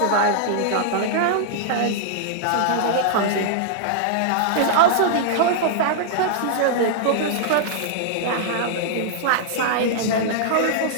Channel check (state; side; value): different; both; correlation -0.01